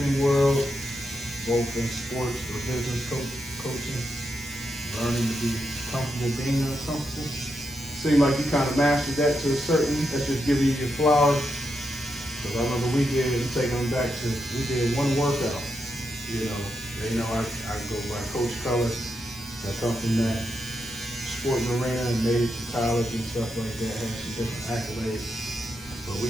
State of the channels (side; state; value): both; normal; correlation 0.84